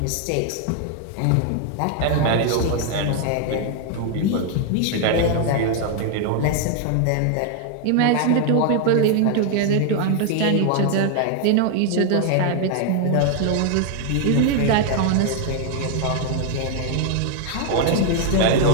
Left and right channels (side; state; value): both; different; correlation 0.00